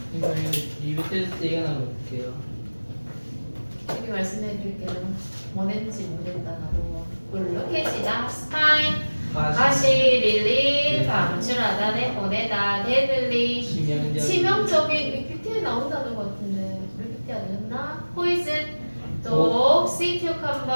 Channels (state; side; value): inverted; both; correlation -1.00